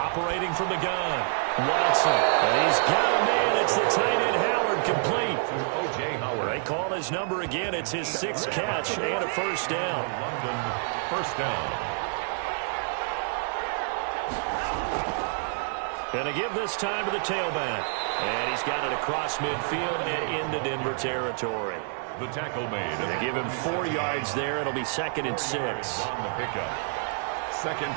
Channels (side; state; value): left; silent; 57 dB below the other